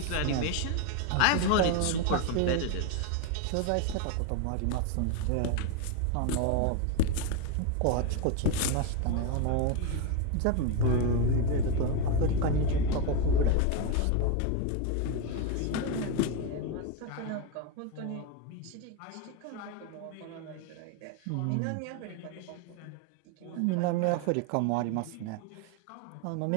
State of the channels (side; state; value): both; different; correlation 0.02